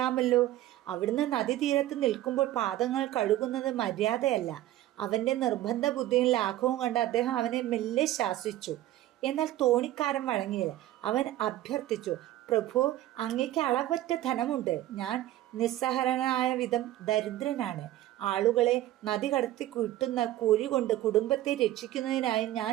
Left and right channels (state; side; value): quieter; left; 14.3 dB